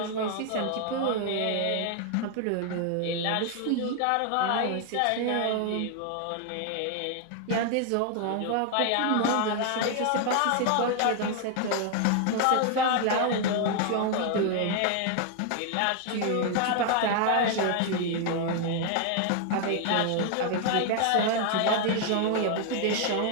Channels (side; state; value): both; different; correlation 0.00